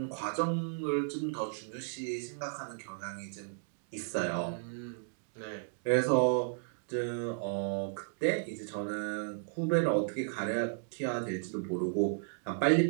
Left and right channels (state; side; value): silent; left; digital silence